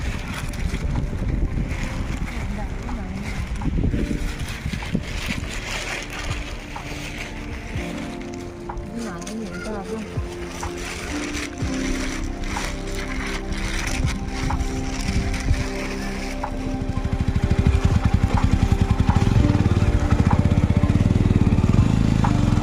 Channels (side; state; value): both; identical; correlation 1.00